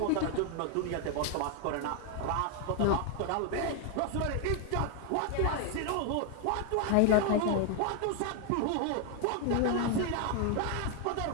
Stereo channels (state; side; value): different; both; correlation 0.00